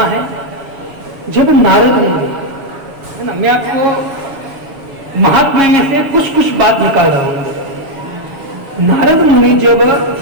है, जब नारद मुनि है ना, मैं आपको महात्मा में से कुछ कुछ बात निकाल रहा हूं। नारद मुनि जब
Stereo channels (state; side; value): late; left; 7.3 ms